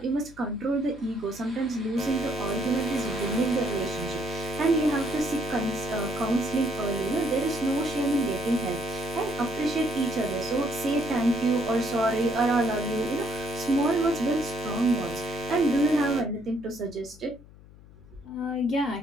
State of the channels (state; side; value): noise; left; hum, 22 dB below the sound